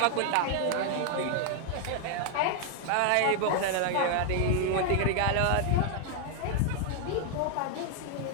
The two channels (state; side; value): different; both; correlation 0.00